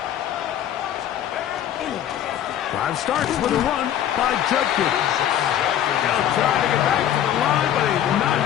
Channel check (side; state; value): right; quieter; 10.8 dB